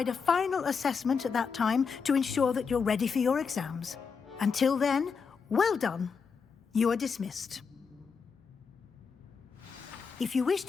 a final assessment at that time to ensure that you're ready for your exams. Until then, well done. You are dismissed. If you wish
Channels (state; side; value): quieter; right; 5.7 dB